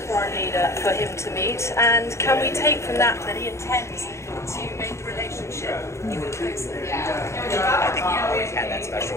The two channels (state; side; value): late; right; 0.14 ms